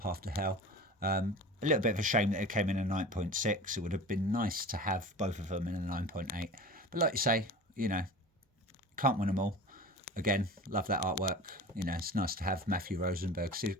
to Hell. A little bit of a shame that it came in a 9.6. It would have been nice to have both of them in a 9.8. But like you say, can't win them all. Again, love that artwork. It's nice to have Matthew Rosenberg's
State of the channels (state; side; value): normal; both; correlation 0.36